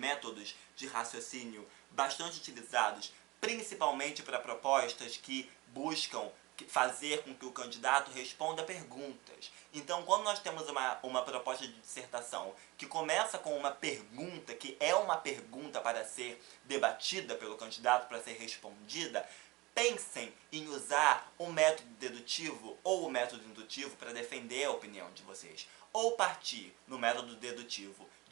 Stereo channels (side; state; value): left; quieter; 22.0 dB